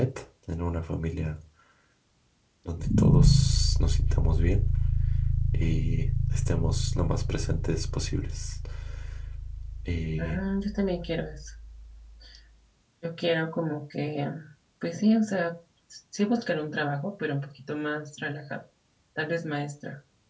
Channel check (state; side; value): identical; both; correlation 1.00